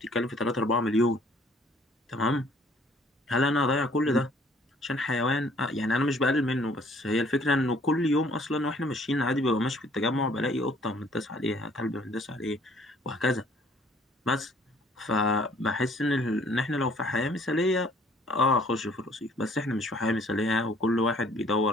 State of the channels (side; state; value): both; normal; correlation 0.59